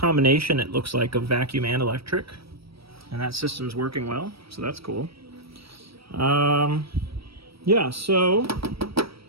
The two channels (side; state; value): left; late; 0.76 ms